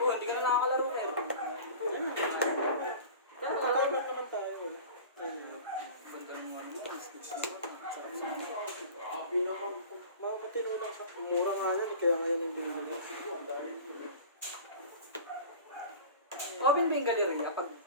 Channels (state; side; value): inverted; both; correlation -0.38